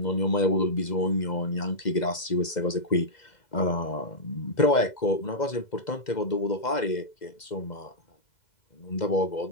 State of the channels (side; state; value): right; late; 2.0 ms